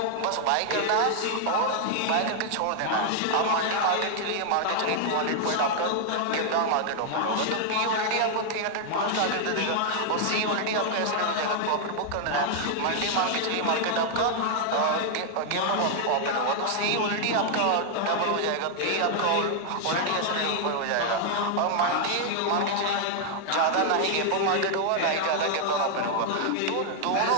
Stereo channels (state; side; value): different; both; correlation 0.00